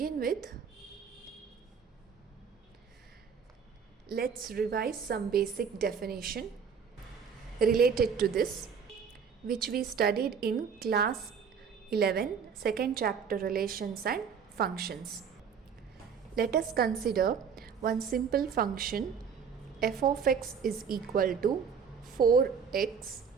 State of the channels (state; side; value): quieter; left; 6.6 dB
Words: with, let's revise some basic definition related to this, which we studied in class 11, second chapter, relations and functions. Let us consider one simple function. F of x is equal to 4x.